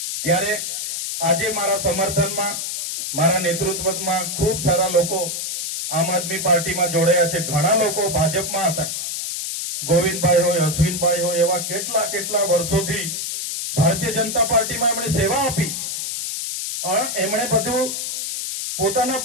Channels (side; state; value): left; noise; hiss, 4 dB below the sound